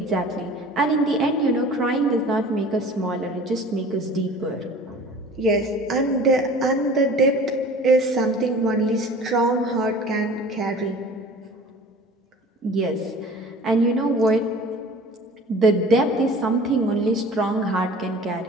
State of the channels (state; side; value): normal; both; correlation 0.43